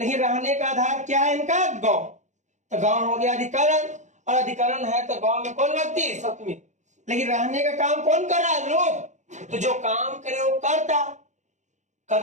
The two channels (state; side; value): late; left; 0.35 ms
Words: रहने का आधार क्या है इनका गांव, तो गांव हो गया अधिकरण, और अधिकरण है तो गांव में कौन व्यक्ति सप्तमी, लेकिन रहने का काम कौन कर रहा है लोग, तो जो काम करे वो करता